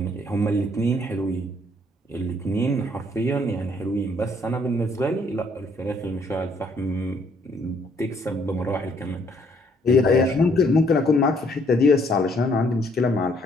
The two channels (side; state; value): both; normal; correlation 0.66